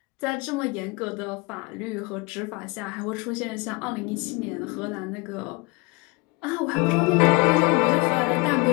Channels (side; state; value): right; quieter; 27.3 dB